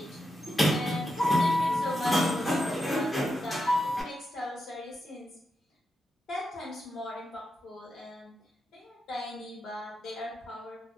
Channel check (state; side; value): normal; both; correlation 0.86